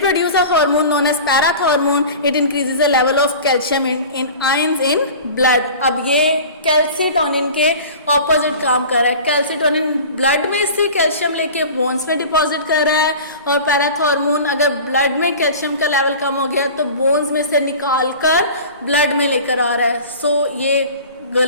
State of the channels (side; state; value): both; inverted; correlation -0.38